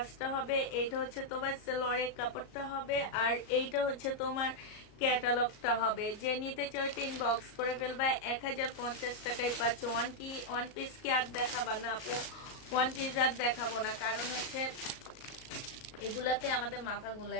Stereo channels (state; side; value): late; right; 38 ms